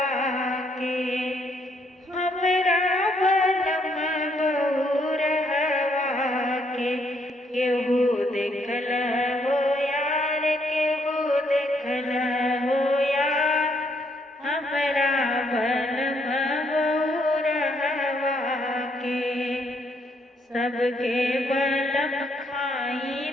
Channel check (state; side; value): normal; both; correlation 0.71